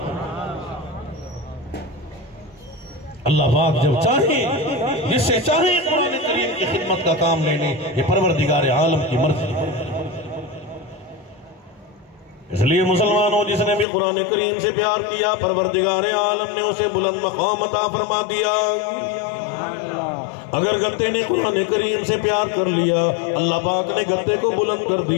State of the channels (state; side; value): drops out; right; at 13.9 s